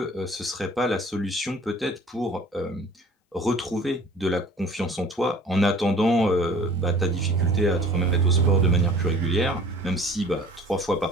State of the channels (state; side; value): normal; both; correlation 0.47